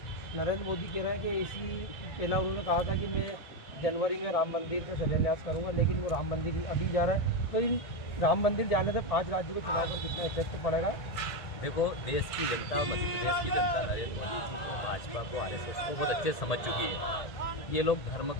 नरेंद्र मोदी कह रहे हैं कि इसी पहला उन्होंने कहा था कि मैं जनवरी में राम मंदिर का शिलान्यास करूँगा, लेकिन वो राम मंदिर अभी जा रहा है। तो इन राम मंदिर जाने से 5 राज्यों के चुनाव पर कितना इफेक्ट पड़ेगा? देखो, देश की जनता, मध्य प्रदेश की जनता नरेंद्र मोदी जी को, भाजपा को, आरएसएस को बहुत अच्छे समझ चुकी है। ये लोग धर्म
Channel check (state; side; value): late; right; 1.8 ms